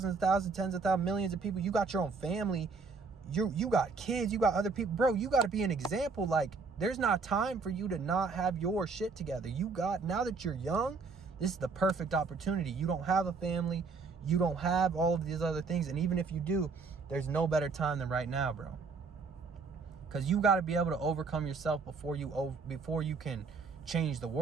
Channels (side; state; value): left; quieter; 4.5 dB